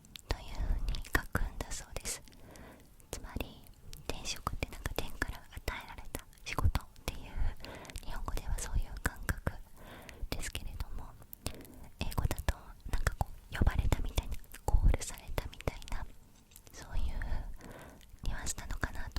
という風に書くんだそうです。つまり転職ってなんか天から与えられた仕事っていう、日本語ではそういう感覚ですけれども、英語だとなんかこう呼ばれたみたいな、コールされたみたいな、そういうニュアンスなのかな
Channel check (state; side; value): identical; both; correlation 1.00